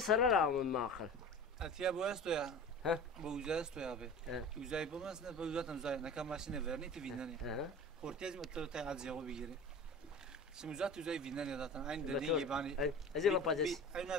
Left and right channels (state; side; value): normal; both; correlation 0.36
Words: ما اخر اتيا bu esto ya ها bu uza esto ya abi uzay bu mesela bu uzatan uzay ne kadar maşine verni ti vinani ortez mi to ta azyago bigiri şimdi uzat uzay vinani zaten aynı dediğin gibi hani زي ما بادس